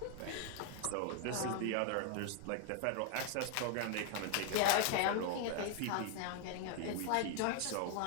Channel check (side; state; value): both; different; correlation 0.00